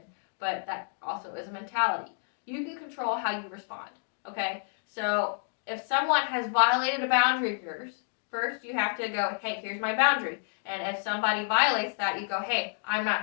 But that also is a mentality. You can control how you respond. Okay? So if someone has violated a boundary of yours, first you have to go, hey, here's my boundary. And if somebody violates that, you go, hey, I'm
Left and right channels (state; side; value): silent; right; digital silence